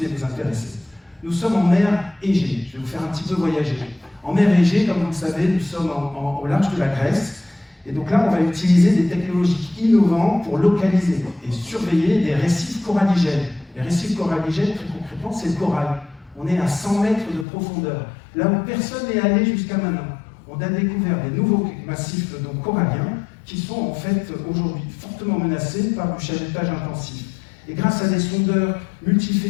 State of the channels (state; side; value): drops out; right; at 17.4 s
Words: et vous intéresser. Nous sommes en mer Égée. Je vais vous faire un petit peu voyager. En mer Égée, comme vous le savez, nous sommes au large de la Grèce. Et donc là, on va utiliser des technologies innovantes pour localiser et surveiller des récifs coralligènes. Les récifs coralligènes, très concrètement, c'est le corail. On est à 100 mètres de profondeur. Là où personne n'est allé jusqu'à maintenant. On a découvert des nouveaux massifs donc, coralliens qui sont en fait aujourd'hui fortement menacés par du chalutage intensif. Et grâce à des sondeurs